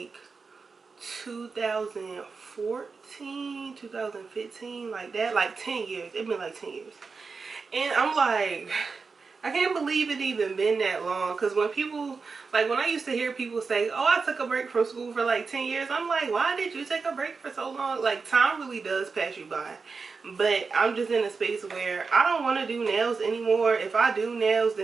2014, 2015, like that, like 10 years. It's been like 10 years. And I'm like, I can't believe it even been that long. Because when people, like when I used to hear people say, oh, I took a break from school for like 10 years. I'm like, why did you take a break for so long? Like, time really does pass you by. But I'm just in a space where I don't want to do nails anymore. If I do nails,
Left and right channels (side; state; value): left; quieter; 4.7 dB